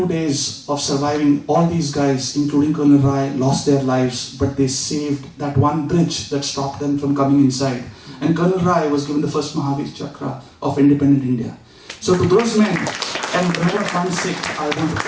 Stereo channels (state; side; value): identical; both; correlation 1.00